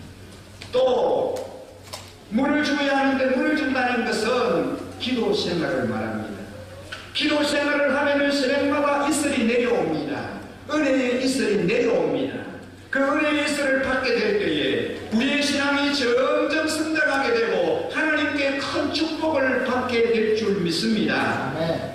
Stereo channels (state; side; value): identical; both; correlation 1.00